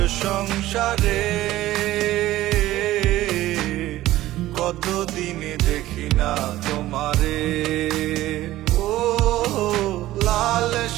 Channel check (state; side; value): quieter; left; 15.6 dB